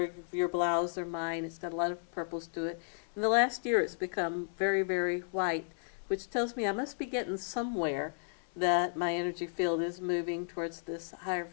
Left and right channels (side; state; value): right; silent; digital silence